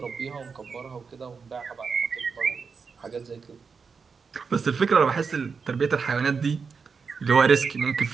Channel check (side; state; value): left; quieter; 5.4 dB